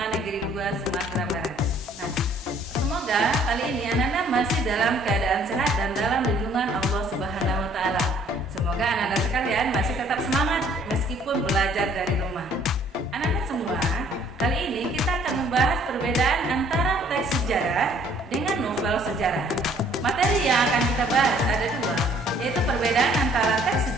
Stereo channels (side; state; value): both; normal; correlation 0.59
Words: Negeri 2 Sumatera Barat. Nah, semoga kali ini anak-anak masih dalam keadaan sehat dan dalam lindungan Allah Subhanahu wa Ta'ala. Semoga anak-anak sekalian masih tetap semangat meskipun belajar dari rumah. Anak-anak semua, kali ini kita akan membahas perbedaan antara teks sejarah dengan novel sejarah. Materi yang akan kita bahas ada dua, yaitu perbedaan antara teks